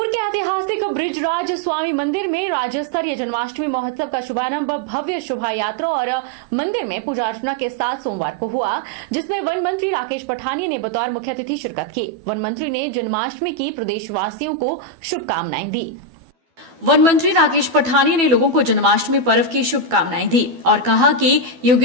के ऐतिहासिक ब्रिजराज स्वामी मंदिर में राज्य स्तरीय जन्माष्टमी महोत्सव का शुभारंभ भव्य शोभा यात्रा और मंदिर में पूजा अर्चना के साथ सोमवार को हुआ, जिसमें वन मंत्री राकेश पठानिया ने बतौर मुख्य अतिथि शिरकत की। वन मंत्री ने जन्माष्टमी की प्रदेशवासियों को शुभकामनाएं दी। वन मंत्री राकेश पठानिया ने लोगों को जन्माष्टमी पर्व की शुभकामनाएं दी और कहा कि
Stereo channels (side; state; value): left; late; 12 ms